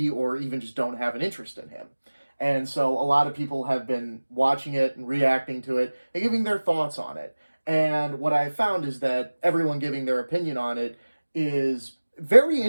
or even just don't have an interest in him. And so a lot of people have been watching it and reacting to it and giving their thoughts on it. And what I found is that everyone giving their opinion on it is very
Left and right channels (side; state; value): both; inverted; correlation -1.00